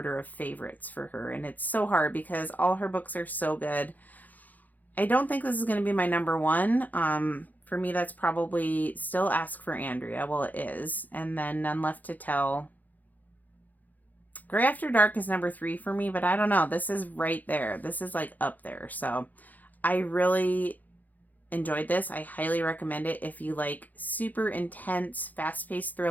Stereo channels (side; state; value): right; late; 0.082 ms